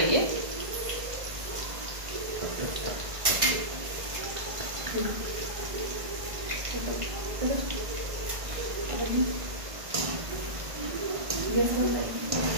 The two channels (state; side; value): late; left; 1.5 ms